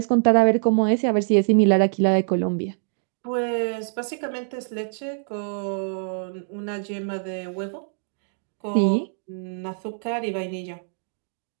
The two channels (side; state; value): left; silent; digital silence